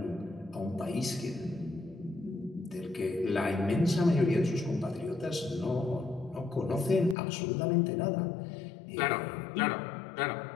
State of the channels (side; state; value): right; drops out; at 7.2 s